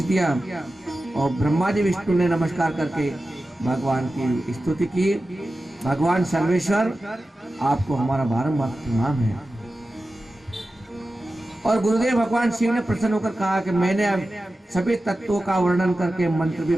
दिया और ब्रह्मा जी विष्णु ने नमस्कार करके भगवान की स्तुति की। भगवान सर्वेश्वर आपको हमारा बारंबार प्रणाम है। और गुरुदेव भगवान शिव ने प्रसन्न होकर कहा कि मैंने अब सभी तत्वों का वर्णन करके मंत्र भी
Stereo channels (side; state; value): both; normal; correlation 0.94